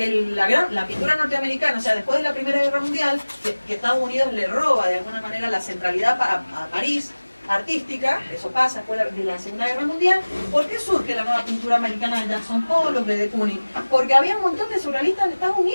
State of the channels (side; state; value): both; inverted; correlation -1.00